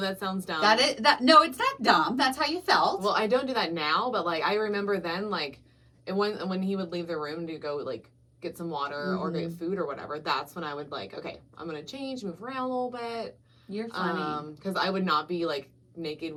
sounds dumb. No, it's not dumb. That's how you felt. Well, I don't do that now, but like I remember then, like, and when he would leave the room to go like get some water or get food or whatever, that's when I would like, okay, I'm gonna change, move around a little bit. You're funny. Because I would not be like naked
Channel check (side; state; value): both; identical; correlation 1.00